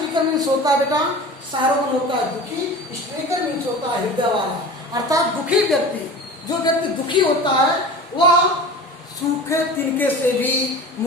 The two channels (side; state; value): both; normal; correlation 0.35